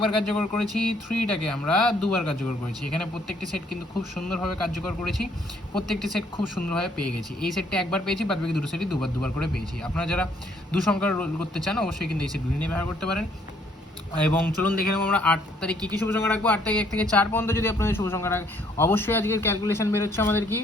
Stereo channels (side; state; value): both; normal; correlation 0.66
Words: কার্যকর করেছি, 3টাকে আমরা দুবার কার্যকর করেছি। এখানে প্রত্যেকটি সেট কিন্তু খুব সুন্দরভাবে কার্যকর করেছি, প্রত্যেকটি সেট খুব সুন্দরভাবে পেয়ে গেছি। এই সেটটা একবার পেয়েছি, বাদ বাকি দুটো সেটই দুবার করে পেয়েছি। আপনারা যারা দু সংখ্যার রোল করতে চান অবশ্যই কিন্তু এই সেটগুলি নিয়ে ব্যবহার করতে পারেন। এবং চলুন দেখে নেবো আমরা 8 তারিখ কী কী শুভ সংখ্যা রাখবো। 8 তারিখ 1 থেকে 4 পর্যন্ত যদি আপনাদের শুভ সংখ্যা রাখে, অবশ্যই আজকের ক্যালকুলেশন বেরোচ্ছে আমাদের কি